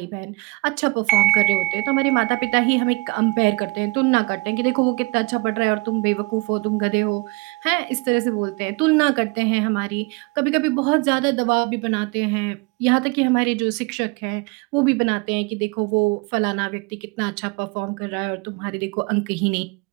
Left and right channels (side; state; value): left; quieter; 23.9 dB